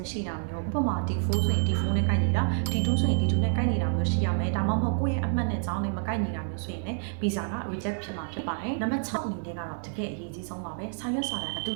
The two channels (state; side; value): silent; left; 59 dB below the other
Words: မရှိတာမျိုးဥပမာ D4 ဆိုရင် D4 နဲ့ကိုက်ညီတာ D2 ဆိုရင် D2 နဲ့ကိုက်ညီတာမျိုးရှိရမယ်ဒါမှမဟုတ်ကိုယ့်ရဲ့အမှတ်နဲ့အကြောင်းနဲ့မကိုက်ညီတာမျိုးဆိုရင်လည်း visa က reject ဖြစ်မှာဖြစ်ပါတယ်။နံပါတ်6အနေနဲ့ကတော့တကယ်အရေးကြီးဆုံးပါပဲ။စာရွက်စာတမ်းအတု